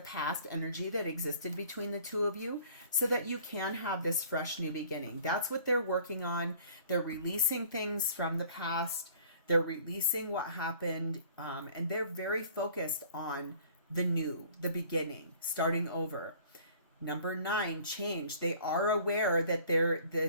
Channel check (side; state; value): both; inverted; correlation -0.52